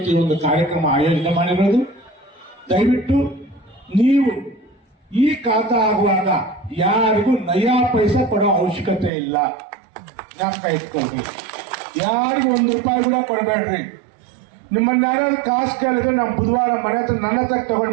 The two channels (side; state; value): left; drops out; at 9.1 s